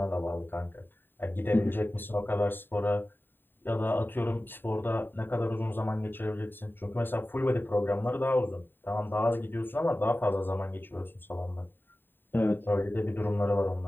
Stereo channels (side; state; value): right; late; 0.095 ms